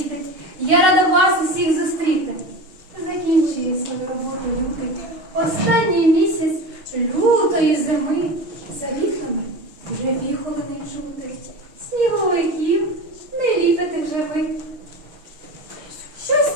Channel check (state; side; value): late; left; 6.5 ms